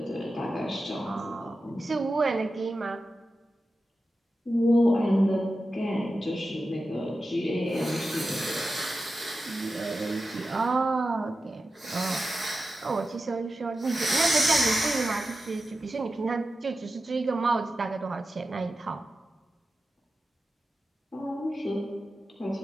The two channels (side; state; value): both; normal; correlation 0.92